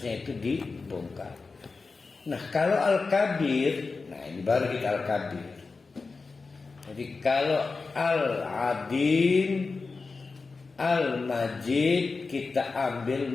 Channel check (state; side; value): quieter; right; 4.2 dB